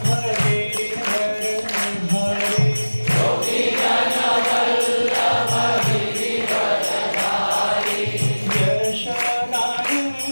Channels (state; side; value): inverted; both; correlation -1.00